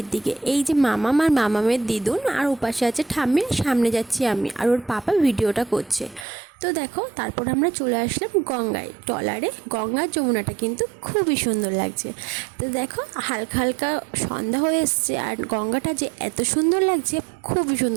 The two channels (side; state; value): left; drops out; at 6.2 s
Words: দিকে। এই যে মামাম আর মামামের দিদুন, আর ওপাশে আছে ঠাম্মি, সামনে যাচ্ছি আমি, আর ওর পাপা ভিডিওটা করছে। তো দেখো, তারপর আমরা চলে আসলাম গঙ্গায়, ট্রলারে। গঙ্গার যমুনাটা কিন্তু খুবই সুন্দর লাগছে। তো দেখো, হালকা হালকা সন্ধ্যা হয়ে এসছে, আর গঙ্গাটা যে এত সুন্দর লাগছে, খুবই